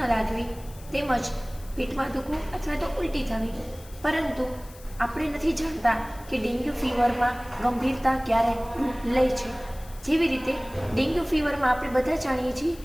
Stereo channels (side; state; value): left; noise; hiss, 21 dB below the sound